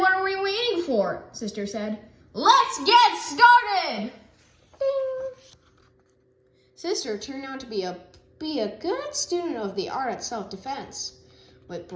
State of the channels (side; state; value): both; identical; correlation 1.00